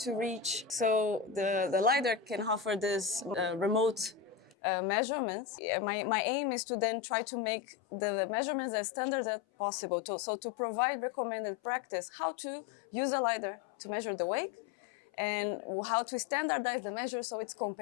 reach. So the Lidar can offer this remote measurements. My aim is to then try to make the measurements as standard as possible. So to provide recommended practice, how to use a Lidar to measure the wake, and how to standardize the measure so it's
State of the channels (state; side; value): drops out; right; at 4.5 s